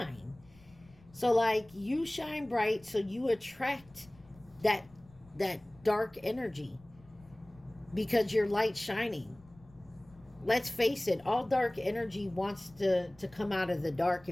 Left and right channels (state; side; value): noise; left; rumble, 26 dB below the sound